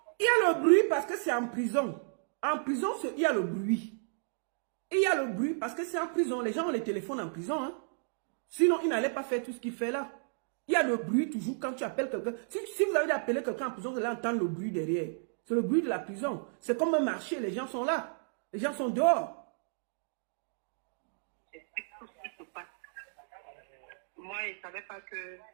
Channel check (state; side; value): silent; left; digital silence